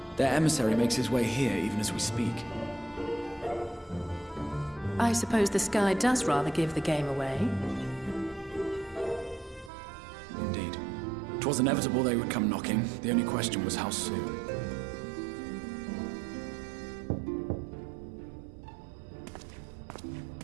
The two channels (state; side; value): drops out; left; at 9.7 s